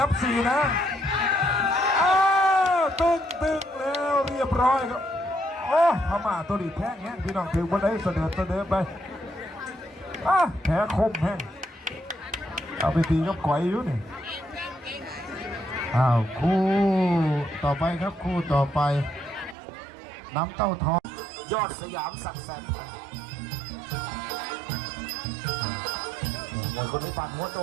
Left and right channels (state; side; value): drops out; left; at 19.6 s